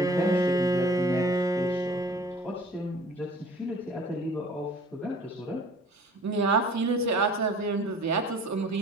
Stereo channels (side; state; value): both; normal; correlation 0.48